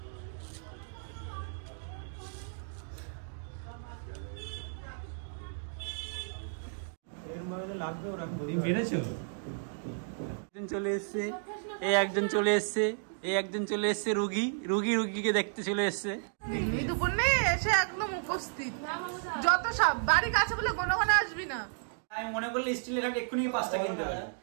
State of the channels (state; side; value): silent; left; digital silence